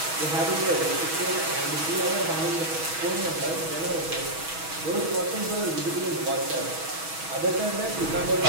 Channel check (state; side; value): late; left; 6.2 ms